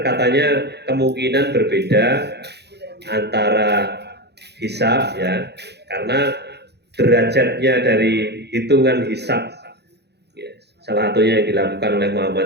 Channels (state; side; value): late; left; 0.49 ms